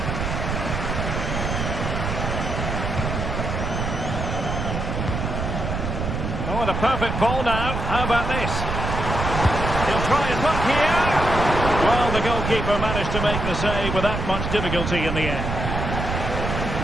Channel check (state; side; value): noise; right; rumble, 3 dB below the sound